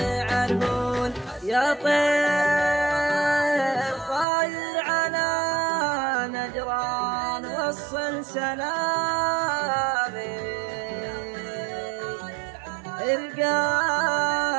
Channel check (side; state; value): left; drops out; at 4.2 s